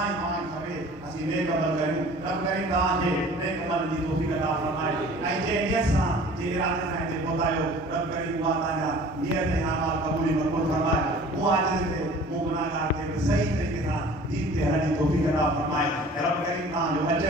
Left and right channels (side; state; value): both; normal; correlation 0.47